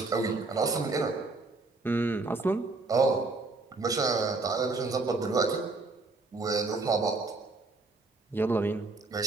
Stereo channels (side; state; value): left; quieter; 3.5 dB